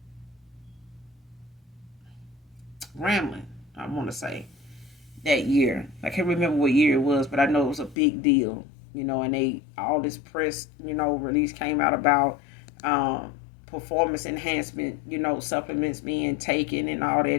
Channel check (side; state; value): right; drops out; at 8.0 s